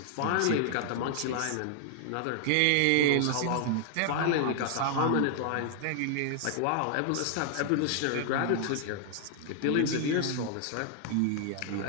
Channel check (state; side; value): different; both; correlation 0.00